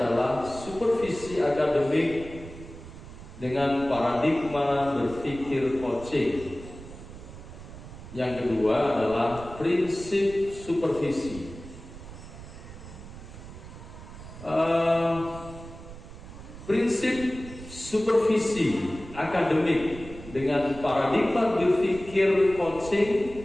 supervisi akademik dengan paradigma berpikir coaching. Yang kedua adalah prinsip supervisi. Prinsip supervisi akademik dengan paradigma berpikir coaching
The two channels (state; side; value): noise; right; rumble, 15 dB below the sound